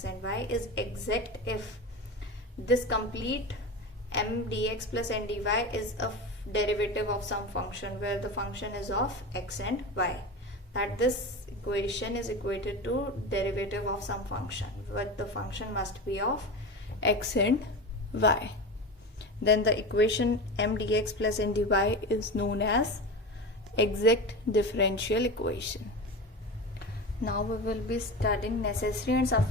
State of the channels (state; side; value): normal; both; correlation 0.26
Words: and y, is exact if this complete m dx plus n dy is a derivative of some function where the function is of x and y. That this equation is equated to derivative of some function, but the function must be of x and y. Then the equation m dx plus n dy is known as exact differential equation. Now we will be studying necessary and